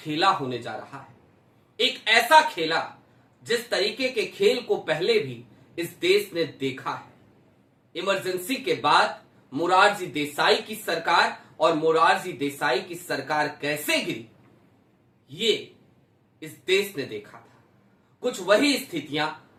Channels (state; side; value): identical; both; correlation 1.00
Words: होने जा रहा है, एक ऐसा खेला जिस तरीके के खेल को पहले भी इस देश ने देखा है। इमरजेंसी के बाद मोरारजी देसाई की सरकार और मोरारजी देसाई की सरकार कैसे गिरी, ये इस देश ने देखा था। कुछ वही स्थितियां